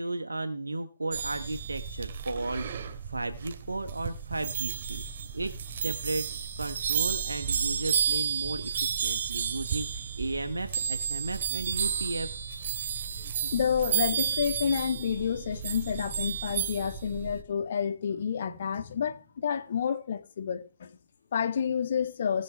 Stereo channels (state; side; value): inverted; both; correlation -0.70